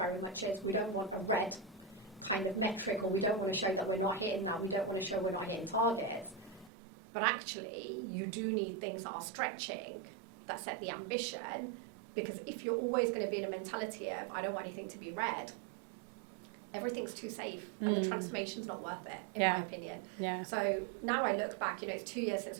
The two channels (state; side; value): drops out; left; at 6.7 s